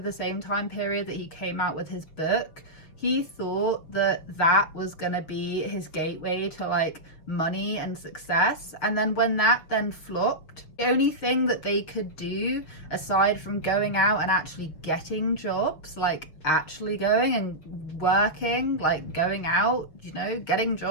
same time period that he came out with his book, he thought that that was gonna be his gateway to like money and success. And then when that then flopped, the only thing that they could do aside from going out and actually getting jobs, like actually going and working, like going out, you know, getting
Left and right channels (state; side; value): late; right; 6.6 ms